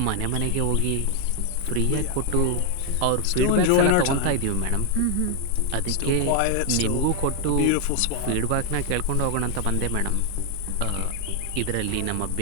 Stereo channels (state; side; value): different; both; correlation 0.00